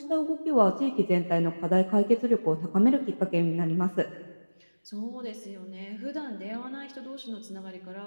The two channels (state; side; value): inverted; both; correlation -1.00